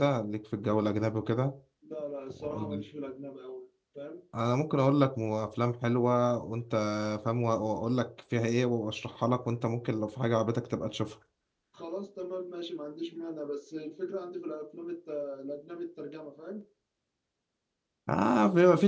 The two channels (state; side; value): identical; both; correlation 1.00